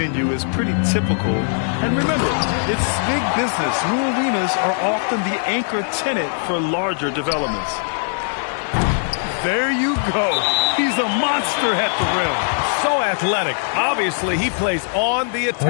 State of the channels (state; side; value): silent; right; 66 dB below the other